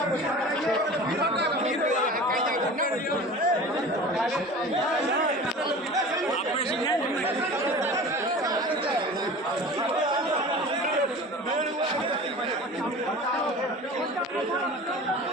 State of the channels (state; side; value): normal; both; correlation 0.38